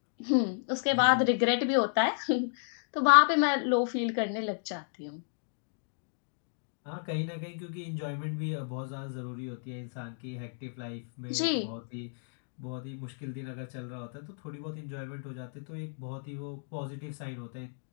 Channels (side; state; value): right; silent; digital silence